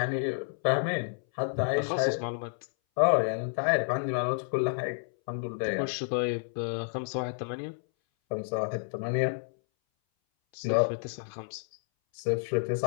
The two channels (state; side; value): silent; right; 58 dB below the other